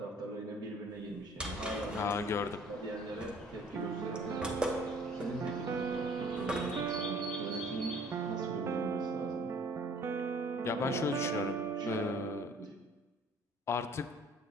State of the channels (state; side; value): normal; both; correlation 0.54